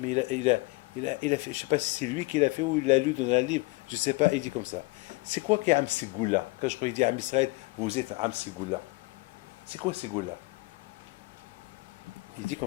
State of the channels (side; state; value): right; quieter; 24.3 dB